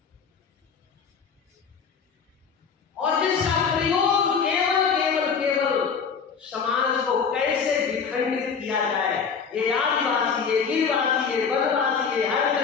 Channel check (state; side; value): quieter; right; 6.1 dB